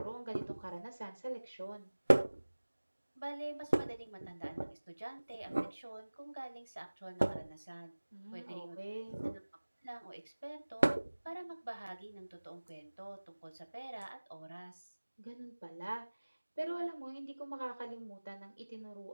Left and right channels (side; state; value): both; inverted; correlation -1.00